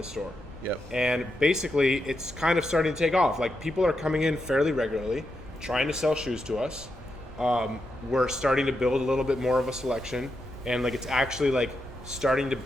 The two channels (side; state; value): both; normal; correlation 0.85